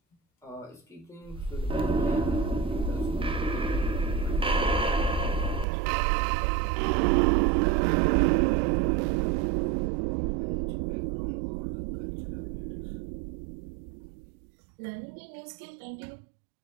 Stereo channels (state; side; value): drops out; left; at 5.7 s